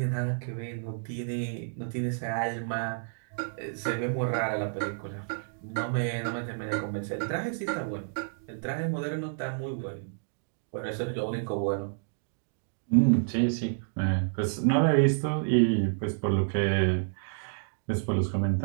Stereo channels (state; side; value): silent; left; digital silence